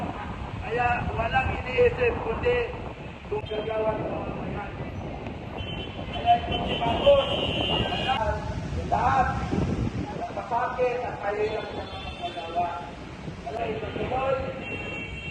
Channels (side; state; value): both; identical; correlation 1.00